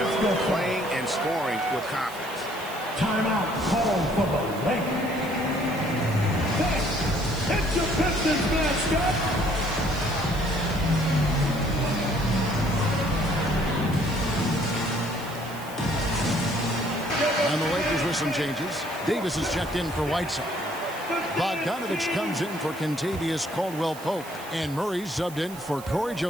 playing and scoring with confidence. Timeout called for the Lakers. It's your Pistons mascot. And the Lakers with some changes. Davis is checked in for Whiteside. Bogdanovic comes in for Kentavious Caldwell-Pope. And Murray subbed in for Corey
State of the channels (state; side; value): noise; right; hiss, 17 dB below the sound